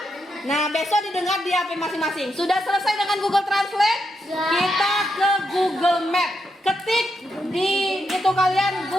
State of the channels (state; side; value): normal; both; correlation 0.83